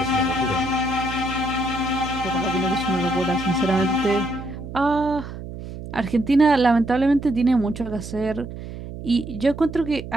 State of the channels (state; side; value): noise; right; hum, 11 dB below the sound